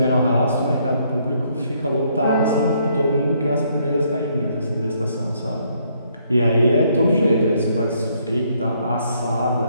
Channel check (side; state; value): both; inverted; correlation -0.70